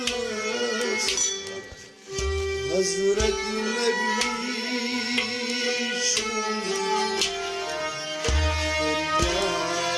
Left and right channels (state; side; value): identical; both; correlation 1.00